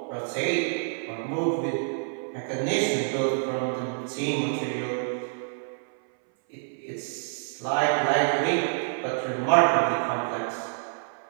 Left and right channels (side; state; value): left; silent; 60 dB below the other